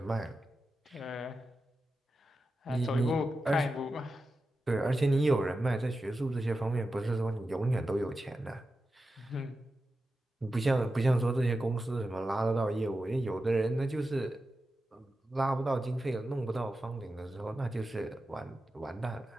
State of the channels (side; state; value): both; normal; correlation 0.91